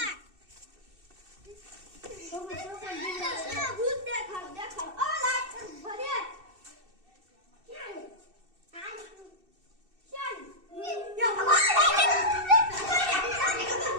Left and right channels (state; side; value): late; left; 2.6 ms